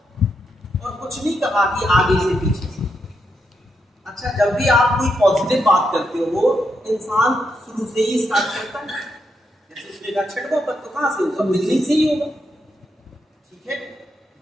और कुछ नहीं कहा कि आगे से पीछे से। अच्छा, जब भी आप कोई पॉजिटिव बात करते हो इंसान शुरू से ही स्टार्ट करता है। जैसे उसने कहा छठवां पद, तो कहां से होगा? बिगिनिंग से ही होगा। ठीक है,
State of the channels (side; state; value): both; normal; correlation 0.82